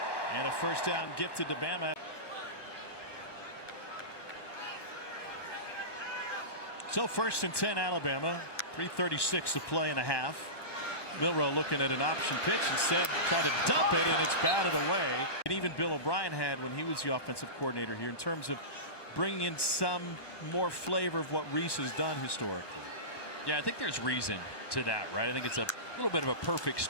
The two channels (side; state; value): right; late; 1.1 ms